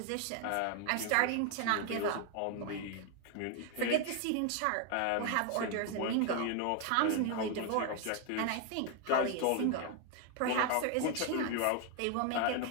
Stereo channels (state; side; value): different; both; correlation 0.01